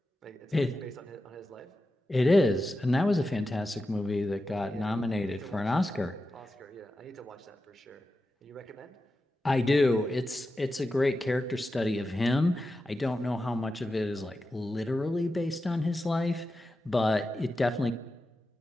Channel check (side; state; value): both; normal; correlation 0.91